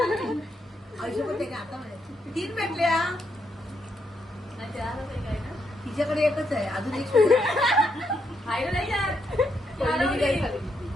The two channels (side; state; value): both; normal; correlation 0.78